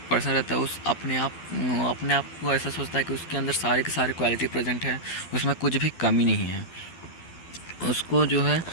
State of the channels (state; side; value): late; right; 12 ms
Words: पर्सन रहता है उस अपने आप को ऐसा सोचता है कि उसके अंदर सारे के सारे क्वालिटी प्रेजेंट है, उसमें कुछ भी कमी नहीं है। उसको जो है